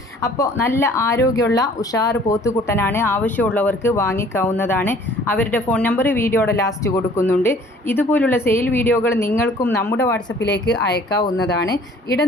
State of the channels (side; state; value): both; normal; correlation 0.54